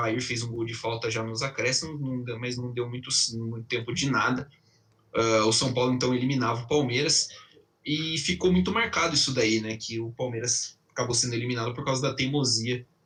fez um gol de falta já nos acréscimos, mas não deu muito tempo de nada. O São Paulo então eliminava o Palmeiras, e ficou muito marcado isso daí, né, que o Palmeiras acabou sendo eliminado por causa da teimosia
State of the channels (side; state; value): both; identical; correlation 1.00